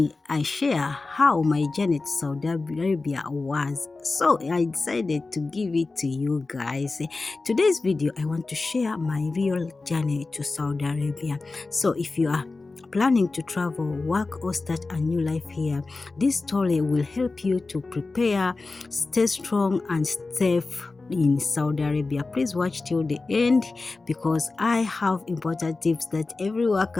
I share how my journey to Saudi Arabia was, so I decided to give it to you guys. Today's video I want to share my real journey to Saudi Arabia. So if you are planning to travel, work or start a new life here, this story will help you to prepare, stay strong and safe in Saudi Arabia. Please watch till the end because I have important tips that every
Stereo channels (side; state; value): right; quieter; 3.6 dB